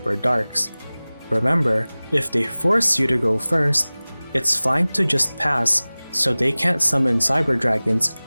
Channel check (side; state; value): both; inverted; correlation -0.99